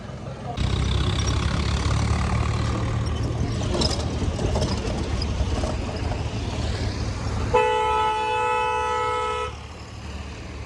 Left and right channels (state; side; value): identical; both; correlation 1.00